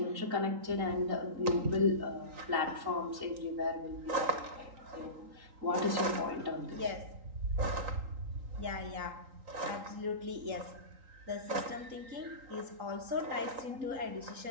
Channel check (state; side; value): late; left; 3.8 ms